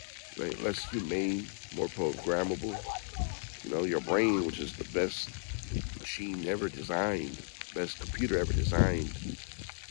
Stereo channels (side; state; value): right; silent; digital silence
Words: right? Less humane, more programmable. You know, your brain, which is the best machine ever designed, best computer ever designed,